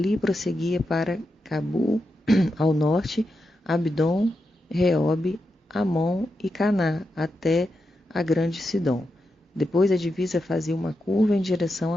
prosseguia para Cabul, ao norte, Abdon, Reob, Amon e Caná, até a grande Sidom. Depois a divisa fazia uma curva em direção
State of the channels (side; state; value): both; normal; correlation 0.87